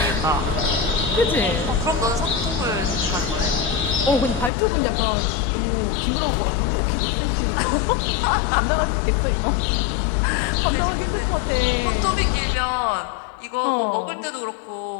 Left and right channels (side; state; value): right; drops out; at 4.5 s